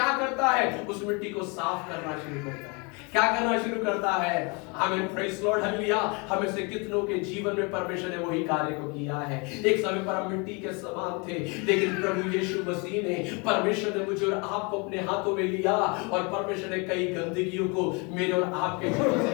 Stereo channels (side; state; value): right; quieter; 30.9 dB